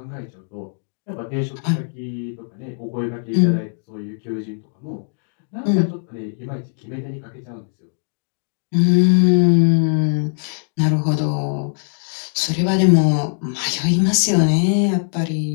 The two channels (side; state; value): right; silent; digital silence